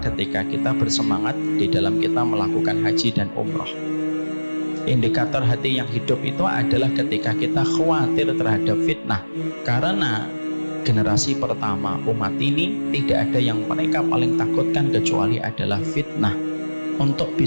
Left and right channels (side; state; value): both; inverted; correlation -1.00